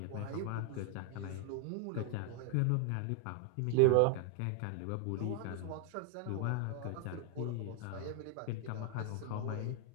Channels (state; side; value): different; both; correlation 0.00